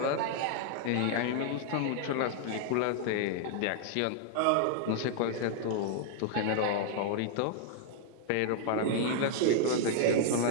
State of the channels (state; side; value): different; both; correlation -0.01